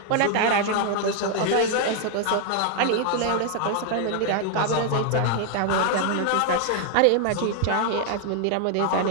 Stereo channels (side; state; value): both; different; correlation 0.00